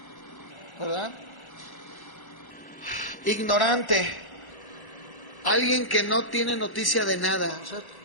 ¿verdad? Ignorante, alguien que no tiene noticia de nada, o sea,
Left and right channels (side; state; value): right; late; 1.1 ms